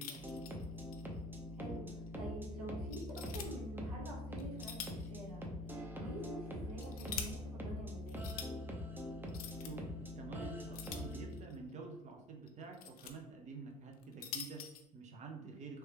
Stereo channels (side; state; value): both; normal; correlation 0.46